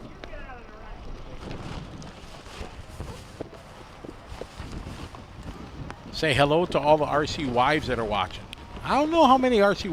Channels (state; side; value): identical; both; correlation 1.00